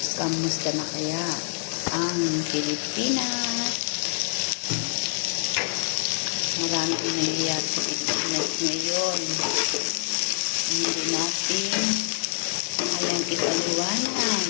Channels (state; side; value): silent; right; digital silence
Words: Kamusta na kaya ang Pilipinas? Marami ang nangyayari sa Pilipinas ngayon. Hindi natin kayang